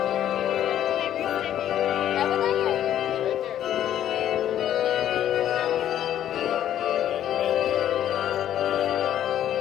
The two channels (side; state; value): right; quieter; 11.2 dB